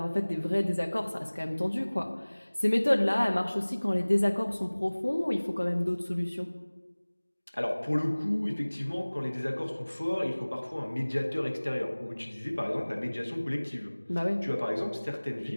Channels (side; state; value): both; inverted; correlation -1.00